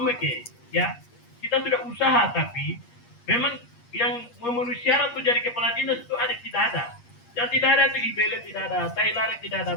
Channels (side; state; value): right; late; 8.5 ms